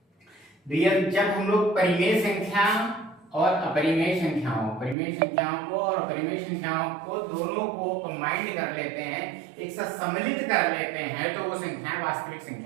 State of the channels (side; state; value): left; drops out; at 5.0 s